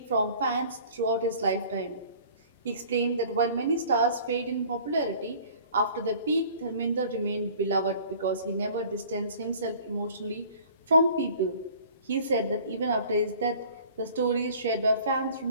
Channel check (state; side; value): inverted; both; correlation -0.49